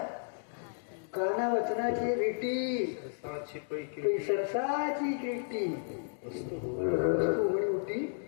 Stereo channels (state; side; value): silent; right; digital silence